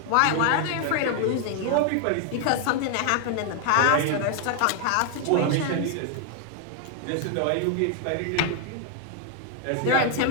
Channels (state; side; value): different; both; correlation 0.00